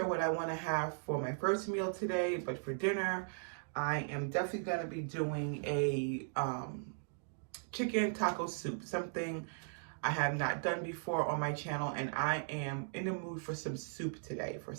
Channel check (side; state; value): left; silent; digital silence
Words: what I want to have for my first meal today, but for dinner, I am definitely going to be doing a chicken taco soup, something I have not done before on my channel, and I am in the mood for some soup today. For